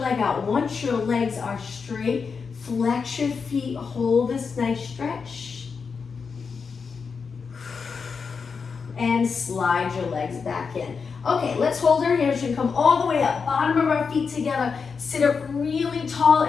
out. Once your legs are straight, flex your feet. Hold this nice stretch. And slide your legs back in. Okay, let's hold our hamstring. Come all the way up. Bottom of our feet together. Sit up really tall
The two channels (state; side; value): quieter; right; 5.5 dB